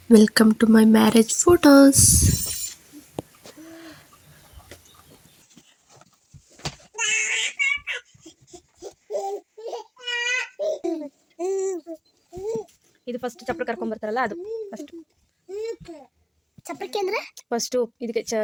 Welcome to my marriage photos. ಇದು ಫಸ್ಟ್ ಚಪ್ಪಲಿ ಕರ್ಕೊಂಡ್ ಬರ್ತಾರಲ್ಲ, ಅದು ಫಸ್ಟ್ ಚಪ್ಪಲಿಕೆ ಅಂದ್ರೆ ಫಸ್ಟ್ ಇದಕ್ಕೆ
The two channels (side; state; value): both; identical; correlation 1.00